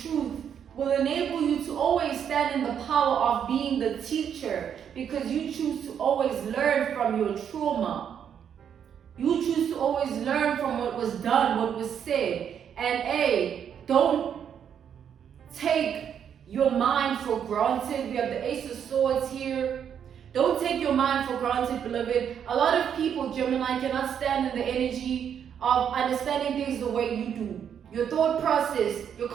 truth will enable you to always stand in the power of being the teacher, because you choose to always learn from your trauma. You choose to always learn from what was done, what was said. And don't take your mind for granted. We have the Ace of Swords here. Don't take your mind for granted, beloved. A lot of people, Gemini, cannot stand in the energy of understanding things the way you do. Your thought process, your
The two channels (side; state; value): left; quieter; 8.4 dB